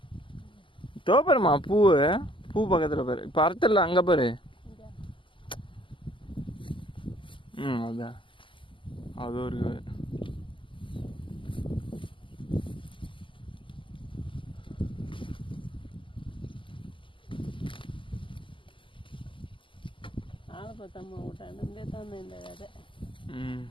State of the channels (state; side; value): late; right; 0.25 ms